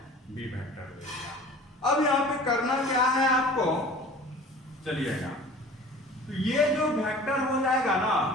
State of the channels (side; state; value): both; normal; correlation 0.43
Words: बी वेक्टर ले लिया। अब यहाँ पे करना क्या है आपको, चलिएगा, तो ये जो वेक्टर हो जाएगा ना,